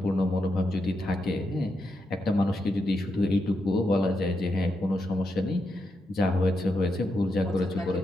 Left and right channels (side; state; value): both; normal; correlation 0.84